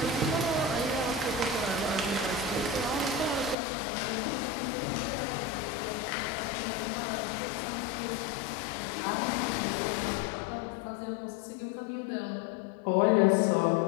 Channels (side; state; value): right; drops out; at 3.6 s